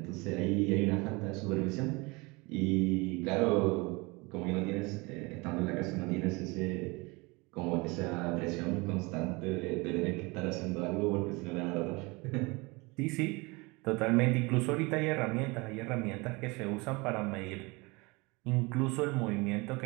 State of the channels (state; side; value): quieter; left; 25.8 dB